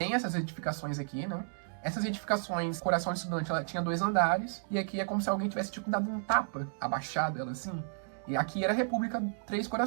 essas edificações aqui, né? Essas edificações, Coração de Estudante, ela tinha 2 andares, e aqui é como se alguém tivesse, tipo, dado um tapa, abaixado ela assim. E aqui era a República Três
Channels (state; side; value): silent; left; digital silence